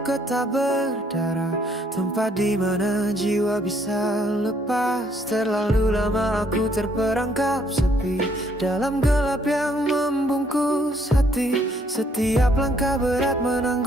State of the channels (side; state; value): both; normal; correlation 0.67